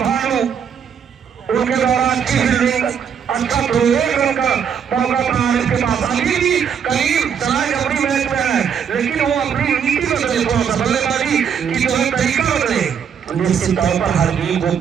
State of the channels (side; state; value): left; quieter; 7.5 dB